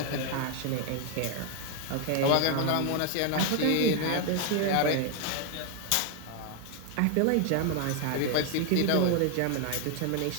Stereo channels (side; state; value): both; different; correlation 0.01